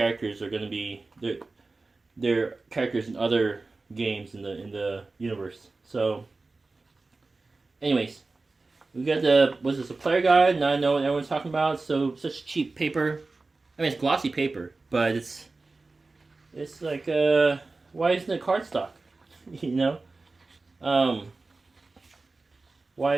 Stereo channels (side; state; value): left; quieter; 3.6 dB